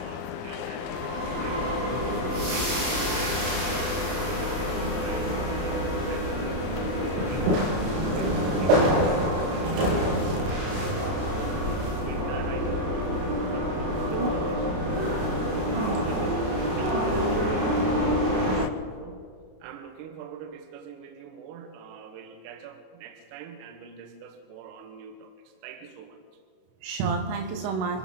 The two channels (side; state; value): left; late; 32 ms